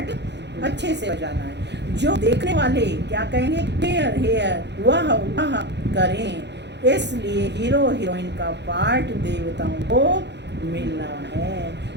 अच्छे से बजाना है। जो देखने वाले क्या कहेंगे, हेयर हेयर वाह वाह करें। इसलिए हीरो हीरोइन का पार्ट देवताओं को मिलना है,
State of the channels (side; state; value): left; late; 0.50 ms